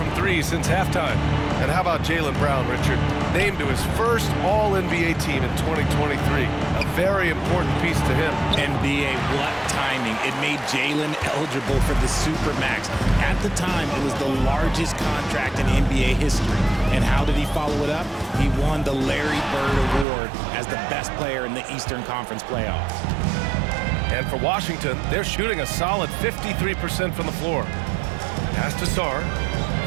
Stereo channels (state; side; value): drops out; left; at 20.1 s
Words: 3 since halftime. And how about Jaylen Brown, Richard? Named to his first All-NBA team in 2023. A very important piece to him. NBA, what timing. It made Jaylen eligible for the Supermax. At the time, it was the largest contract in NBA history. And how did he follow it up? He won the Larry Bird Award as the best player in the Eastern Conference playoffs. And for Washington, they're shooting a solid 53% from the floor. Pass to Sarr.